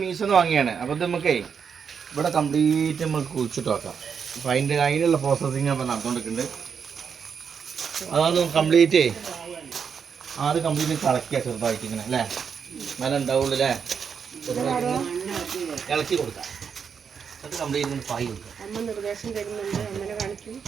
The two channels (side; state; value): left; quieter; 6.7 dB